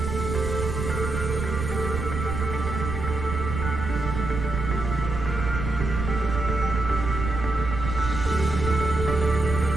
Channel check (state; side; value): noise; right; rumble, 4 dB below the sound